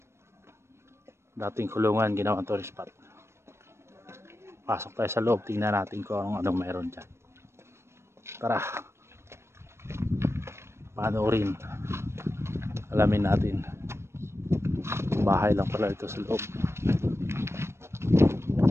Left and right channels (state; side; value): late; left; 0.13 ms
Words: Dating kulungan, ginawang tourist spot. Pasok tayo sa loob, tingnan natin kung anong meron dyan. Tara, panoorin, alamin natin. Bahay lang pala ito sa loob.